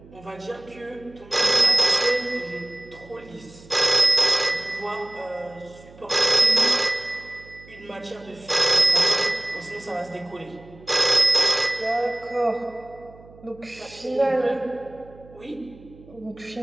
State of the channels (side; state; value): right; noise; hum, 23 dB below the sound